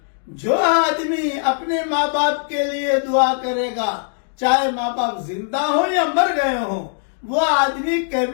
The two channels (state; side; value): silent; right; digital silence